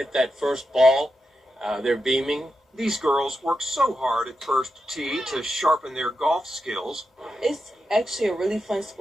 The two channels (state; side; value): normal; both; correlation 0.88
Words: that first ball, they're beaming. These girls work so hard at First Tee to sharpen their golf skills. It's actually a really fun